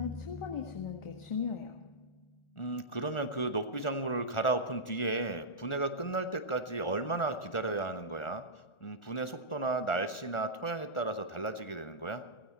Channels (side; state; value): right; late; 1.4 ms